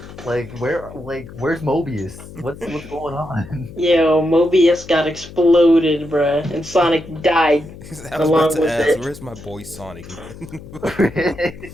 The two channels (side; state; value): left; noise; hum, 16 dB below the sound